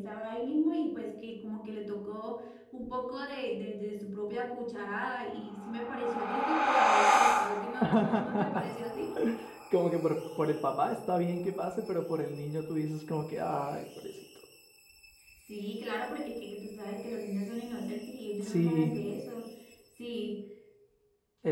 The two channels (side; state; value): both; identical; correlation 1.00